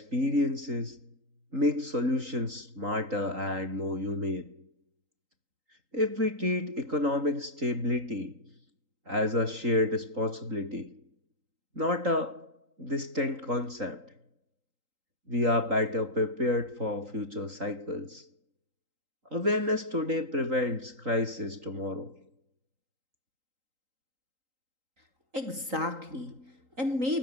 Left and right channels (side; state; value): left; late; 3.8 ms